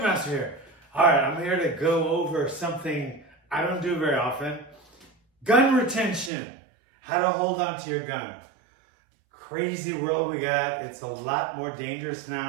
here. Alright, I'm here to go over something I don't do very often. Gun retention. How to hold on to your gun. Crazy world we got. It's a lot more dangerous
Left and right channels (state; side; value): drops out; left; at 6.3 s